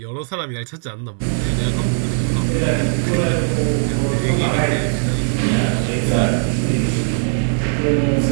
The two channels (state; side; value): silent; left; digital silence